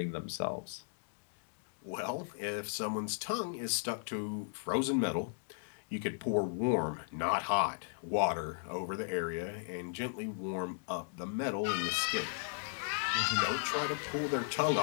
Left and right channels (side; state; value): right; silent; digital silence